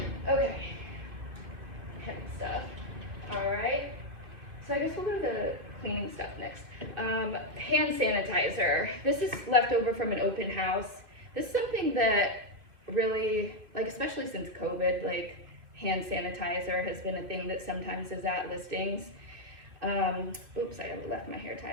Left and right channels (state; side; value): late; left; 2.5 ms